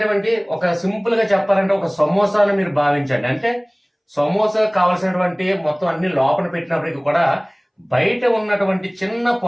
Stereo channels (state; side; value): identical; both; correlation 1.00